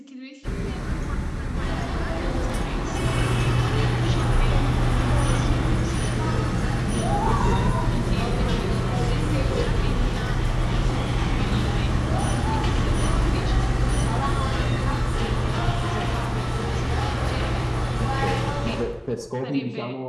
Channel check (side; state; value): both; identical; correlation 1.00